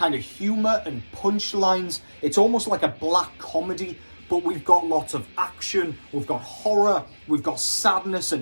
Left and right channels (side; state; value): both; inverted; correlation -1.00